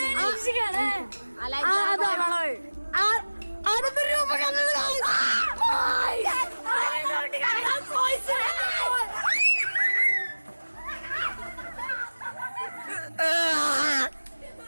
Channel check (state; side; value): inverted; both; correlation -1.00